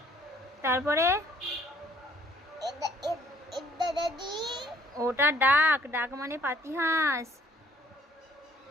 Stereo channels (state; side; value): normal; both; correlation 0.60